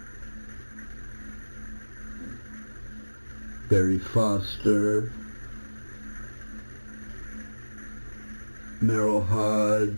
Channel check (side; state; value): both; inverted; correlation -1.00